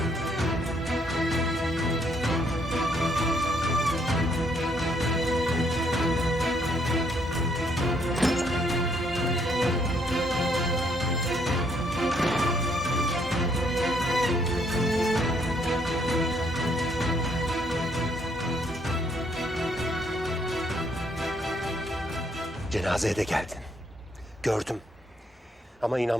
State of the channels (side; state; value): both; normal; correlation 0.70